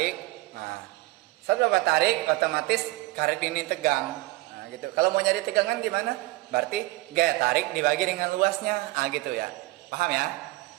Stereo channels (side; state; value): left; quieter; 19.9 dB